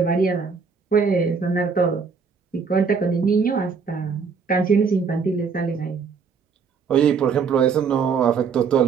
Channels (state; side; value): quieter; left; 5.7 dB